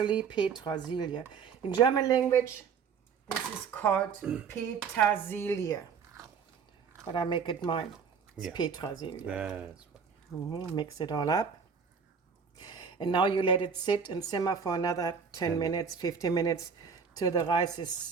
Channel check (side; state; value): left; quieter; 6.2 dB